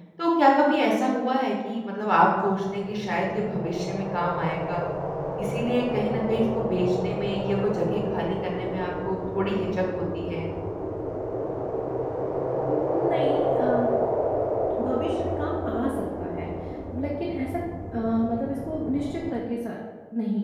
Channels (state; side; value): identical; both; correlation 1.00